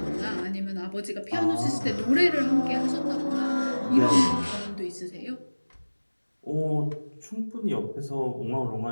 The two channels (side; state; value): both; inverted; correlation -1.00